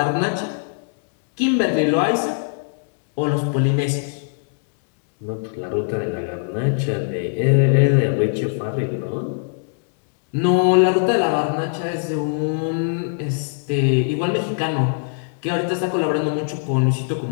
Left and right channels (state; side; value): silent; right; digital silence